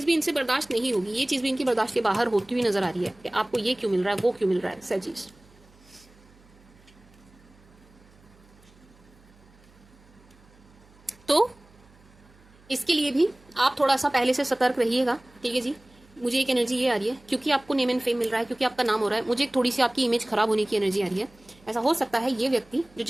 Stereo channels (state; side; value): noise; right; hum, 27 dB below the sound